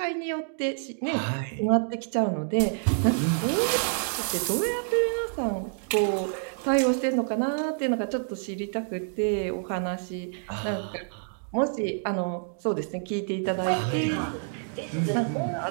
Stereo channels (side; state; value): left; silent; digital silence